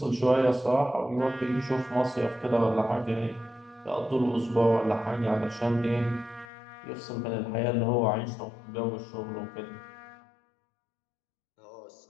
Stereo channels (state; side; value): drops out; right; at 6.5 s